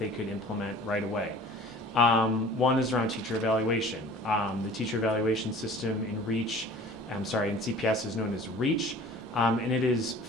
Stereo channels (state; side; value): normal; both; correlation 0.46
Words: could implement right away. One is around teacher evaluation. The teacher evaluation system in CPS is known as REACH, and it is